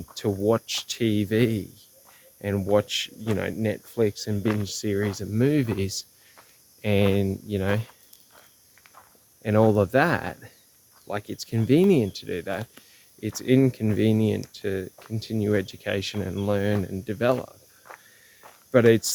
to watch TV and watch, you know, Netflix and binge series of movies and, you know, and all of that. Like, it's convenient to do that. It's inconvenient to continue education and learn and develop. But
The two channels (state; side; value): identical; both; correlation 1.00